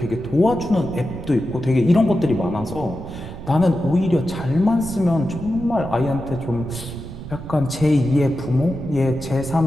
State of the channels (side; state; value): right; noise; rumble, 12 dB below the sound